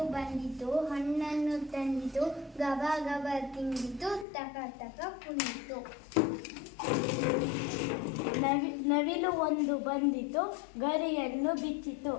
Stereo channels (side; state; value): right; drops out; at 4.2 s